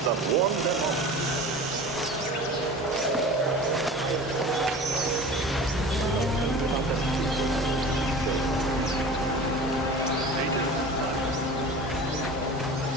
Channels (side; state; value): both; normal; correlation 0.38